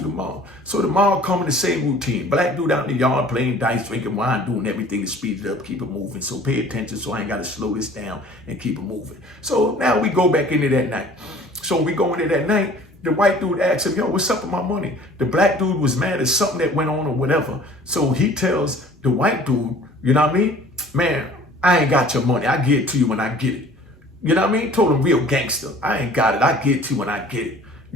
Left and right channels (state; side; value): normal; both; correlation 0.49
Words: So tomorrow come in the same routine. Black dude out in the yard playing dice, drinking wine, doing everything to speed it up, keep it moving. So pay attention so I ain't got to slow this down and keep it moving. So now we go back into that night. So we go into that night. The white dude asked him, yo, what's up with my money? The black dude was mad at something that went on or whatever. So he tells the white dude, you know what I mean? Man, I ain't got your money. I get it to you when I get it. You know what I mean? Told him real gangster. I ain't got it. I get it to you when I get it.